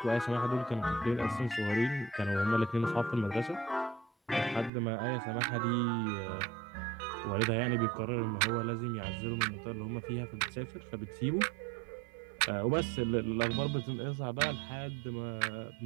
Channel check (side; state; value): left; drops out; at 4.7 s